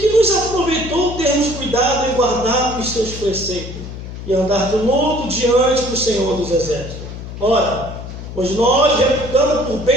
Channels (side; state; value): left; noise; hum, 10 dB below the sound